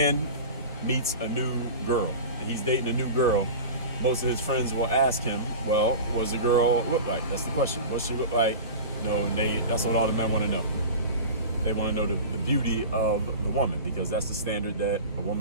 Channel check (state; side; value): inverted; both; correlation -0.32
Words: meets a new girl and he's dating a new girl, most of his friends will ask him, well, what does the girl look like? That's the question. What does she look like? That's what all the men want to know. They want to know the beauty of the woman, because that's the standard that a